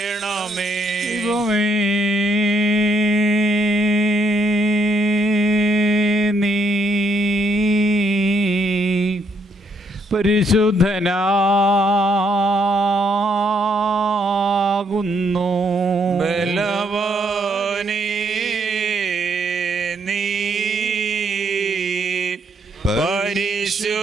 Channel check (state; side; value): normal; both; correlation 0.73